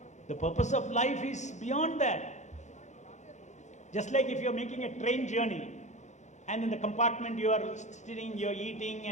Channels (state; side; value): late; right; 0.34 ms